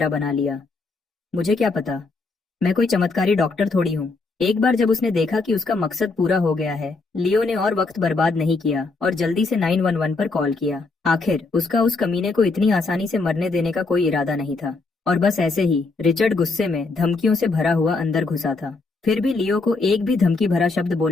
बना लिया। मुझे क्या पता, मैं कोई चमत्कारी डॉक्टर थोड़ी हूँ। एक बार जब उसने देखा कि उसका मकसद पूरा हो गया है, लियो ने और वक्त बर्बाद नहीं किया और जल्दी से 911 पर कॉल किया। आखिर उसका उस कमीने को इतनी आसानी से मरने देने का कोई इरादा नहीं था। और बस ऐसे ही रिचर्ड गुस्से में धमकियों से भरा हुआ अंदर घुसा था। फिर भी लियो को एक भी धमकी भरा शब्द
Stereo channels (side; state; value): right; quieter; 3.8 dB